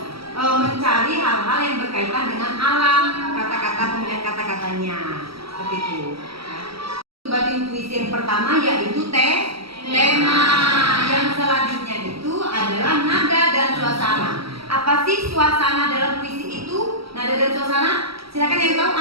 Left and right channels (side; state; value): left; late; 0.75 ms